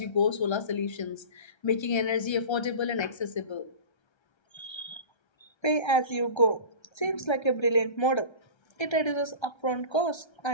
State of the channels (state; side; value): late; right; 1.3 ms